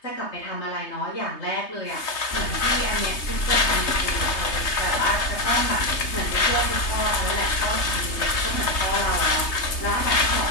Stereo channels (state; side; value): late; right; 3.3 ms